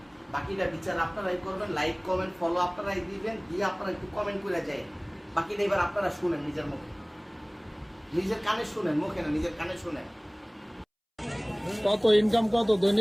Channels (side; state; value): both; identical; correlation 1.00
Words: বাকিটা বিচার আপনারাই করবেন, লাইক কমেন্ট ফলো আপনারাই দিবেন, দিয়ে আপনারা একটু কমেন্ট করে যায়। বাকিটা এবার আপনারা শুনেন নিজের মুখে, নিজের কানে শুনেন, মুখে না, নিজের কানে শুনেন। কত ইনকাম কত